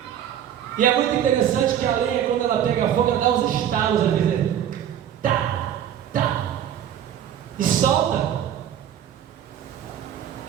E é muito interessante que a lenha, quando ela pega fogo, ela dá uns estalos, às vezes. Tá, tá, e solta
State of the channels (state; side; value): quieter; left; 10.0 dB